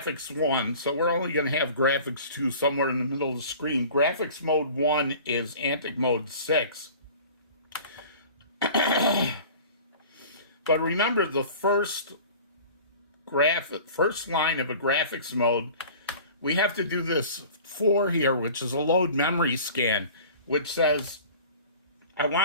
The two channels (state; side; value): inverted; both; correlation -0.43